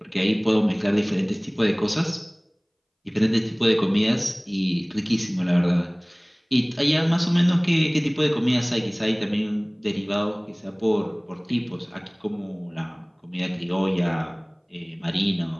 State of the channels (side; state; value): both; identical; correlation 1.00